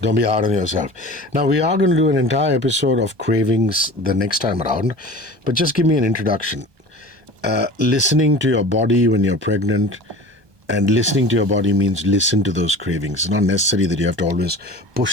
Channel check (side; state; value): left; late; 1.2 ms